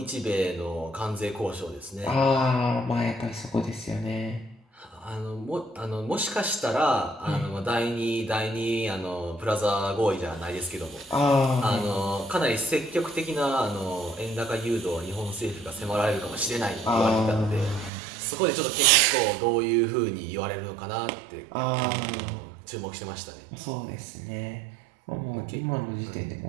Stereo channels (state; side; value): drops out; left; at 17.9 s